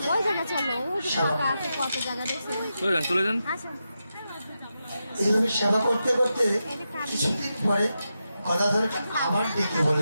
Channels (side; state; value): both; inverted; correlation -0.88